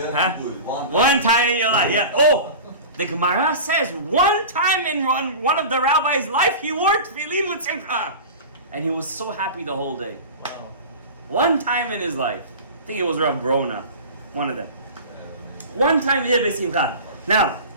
huh? One time in your life, yeah. Oh, the Gemara says one time in one of the rabbi's life, he wore tefillin with simcha, and he was so happy the whole day. Wow. One time in his life. I think it was Rav Brona, one of them. One time he did besimcha. Now,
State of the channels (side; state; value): both; inverted; correlation -0.33